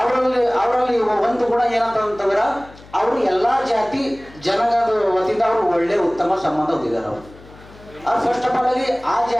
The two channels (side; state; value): left; noise; hum, 22 dB below the sound